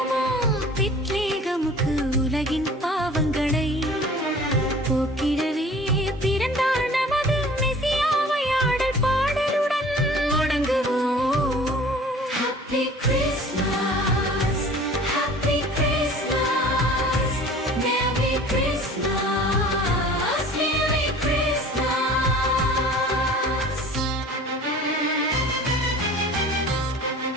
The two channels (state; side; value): normal; both; correlation 0.45